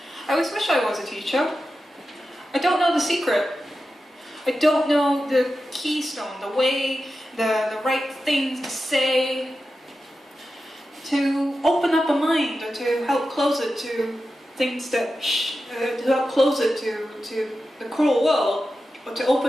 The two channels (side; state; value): both; normal; correlation 0.92